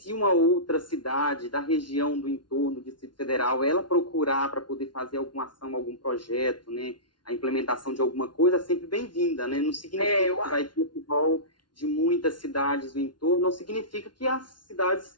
uma outra cidade da região do entorno do Distrito Federal, ela procurar para poder fazer alguma ação, algum projeto, né? A implementação de alguma coisa, é sempre bem-vinda, né? Não significa que vai ter o rol de muitas cidades do entorno, não significa que as cidades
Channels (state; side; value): late; right; 0.71 ms